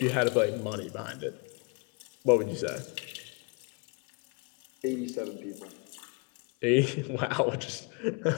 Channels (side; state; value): right; quieter; 32.4 dB